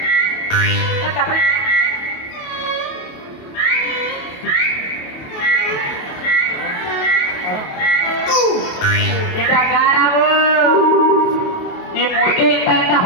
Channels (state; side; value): late; right; 28 ms